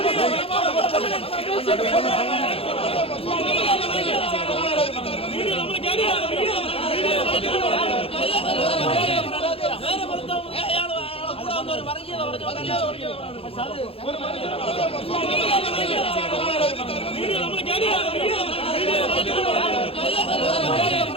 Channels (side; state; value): right; late; 0.27 ms